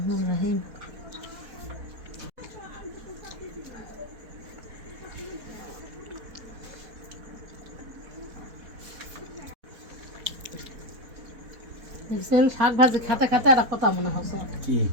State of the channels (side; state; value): left; late; 4.1 ms